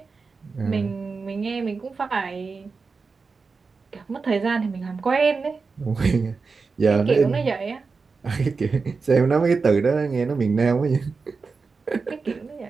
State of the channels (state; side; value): quieter; left; 4.6 dB